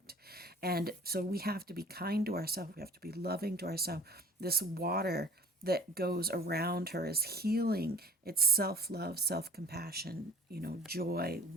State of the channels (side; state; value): both; normal; correlation 0.46